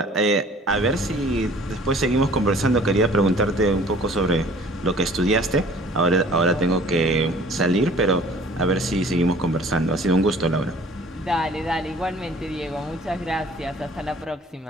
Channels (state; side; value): normal; both; correlation 0.51